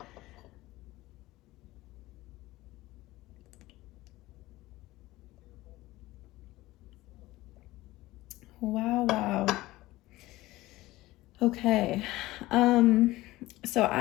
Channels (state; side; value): quieter; right; 18.1 dB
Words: Wow, wow. Okay. So